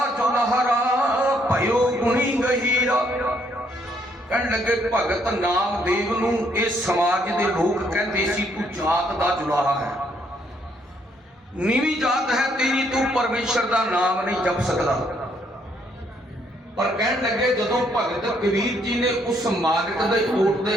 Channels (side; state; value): both; normal; correlation 0.70